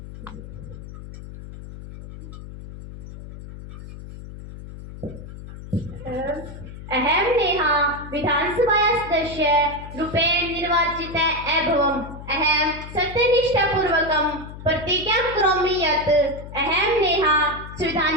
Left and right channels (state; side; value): noise; left; hum, 13 dB below the sound